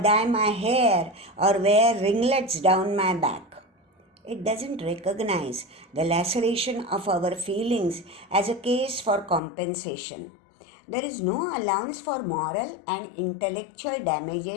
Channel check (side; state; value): right; drops out; at 9.4 s